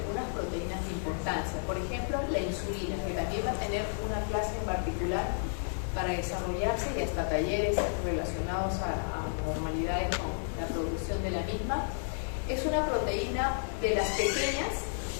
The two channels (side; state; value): right; silent; digital silence